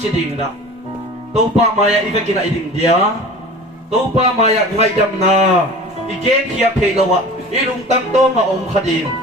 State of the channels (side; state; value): both; normal; correlation 0.39